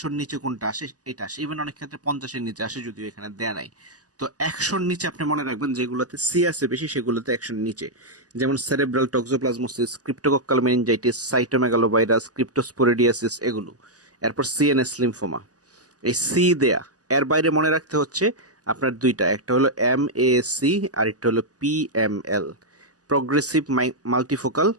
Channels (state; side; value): late; left; 0.67 ms